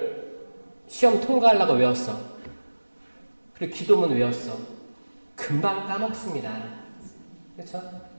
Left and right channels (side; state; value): both; inverted; correlation -1.00